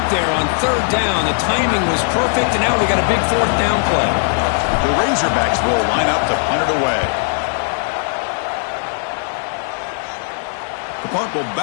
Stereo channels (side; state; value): right; silent; digital silence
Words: there on third down. The timing was perfect, and now we got a big fourth down play. The Razorbacks will line up to punt it away. The punt will